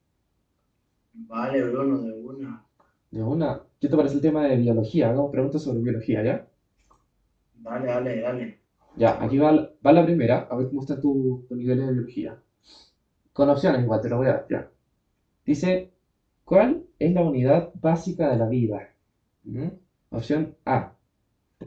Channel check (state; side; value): identical; both; correlation 1.00